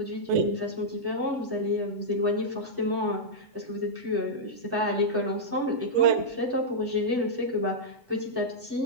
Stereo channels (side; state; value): left; late; 8.0 ms